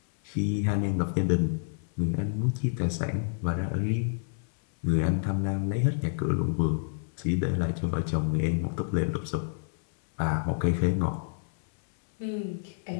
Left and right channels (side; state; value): right; silent; 59 dB below the other